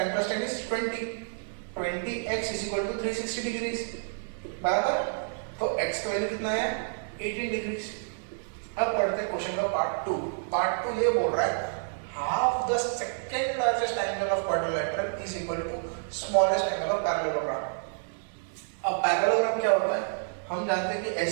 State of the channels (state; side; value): silent; left; digital silence